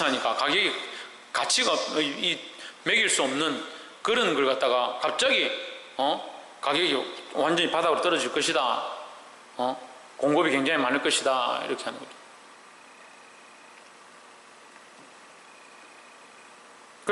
가격이 가치가 매길 수 없는 그런 걸 갖다가 갑자기 가격이 완전히 바닥으로 떨어질 것이다. 공급이 굉장히 많을 것이다. 이렇게 하는 거죠.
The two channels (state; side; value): identical; both; correlation 1.00